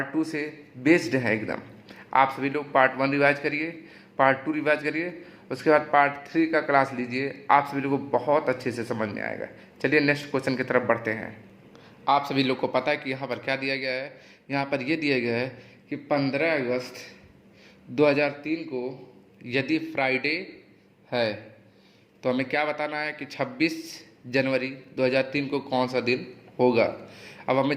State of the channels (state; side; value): identical; both; correlation 1.00